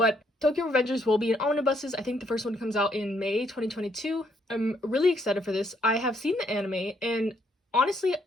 Tokyo Revengers will be in omnibuses. I think the first one comes out in May 2022. I'm really excited for this. I have seen the anime, and honestly,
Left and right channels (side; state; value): both; normal; correlation 0.71